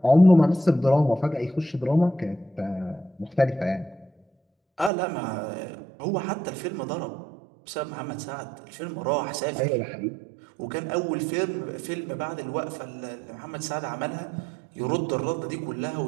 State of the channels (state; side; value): drops out; left; at 4.9 s